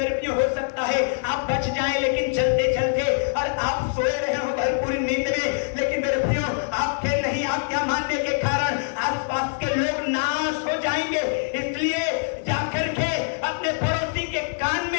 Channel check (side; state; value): right; silent; digital silence